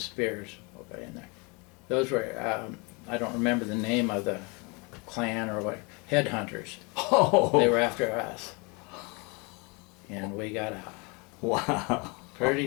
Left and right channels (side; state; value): right; quieter; 29.9 dB